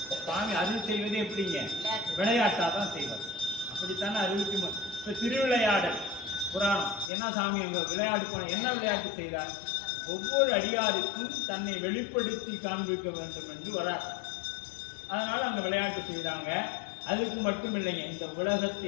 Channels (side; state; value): right; drops out; at 7.1 s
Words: சுவாமி அருள் செய்வது எப்படிங்க? விளையாட்டாக தான் செய்வார். அப்படித்தானே அருளுக்கு இப்போ திருவிளையாடல் புராணம் என்ன சாமி அங்கே விளையாட்டு போன என்ன விளையாட்டு செய்தார்? ஒவ்வொரு அடியாருக்கும் தன்னை வெளிப்படுத்தி காண்பிக்க வேண்டும் என்று வரார். அதனால அங்க விளையாட்டு செய்தாங்க. அதுக்கு மட்டும் இல்லைங்க, இந்த